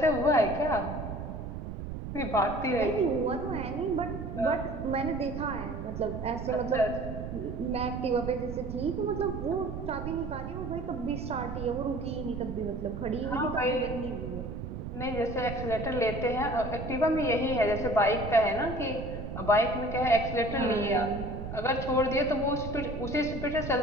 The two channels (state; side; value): noise; right; rumble, 7 dB below the sound